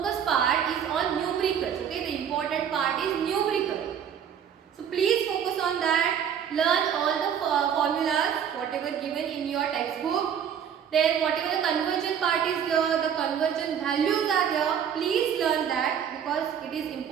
part is on numericals. Okay, the important part is numerical. So please focus on that. Learn all the formulas whatever given in your textbook. Then whatever the conversion part is there, the conversion values are there. Please learn that because it is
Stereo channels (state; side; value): quieter; left; 8.4 dB